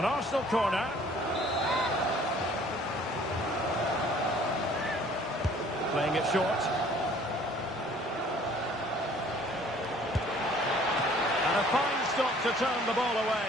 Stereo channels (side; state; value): both; normal; correlation 0.55